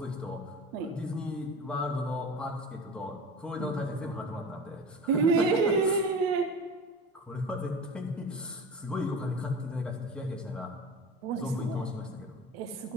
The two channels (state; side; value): normal; both; correlation 0.34